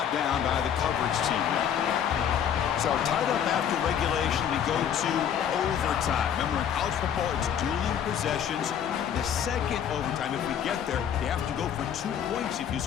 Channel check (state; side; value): quieter; right; 8.8 dB